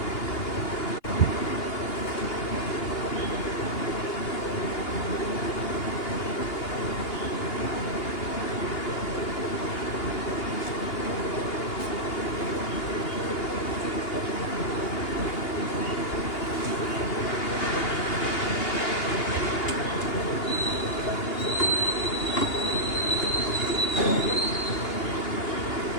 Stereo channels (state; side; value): late; right; 2.8 ms